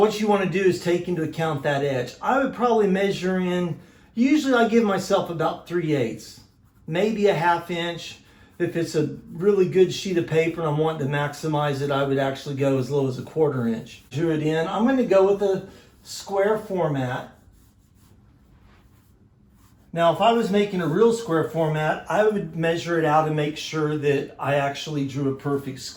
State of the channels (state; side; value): identical; both; correlation 1.00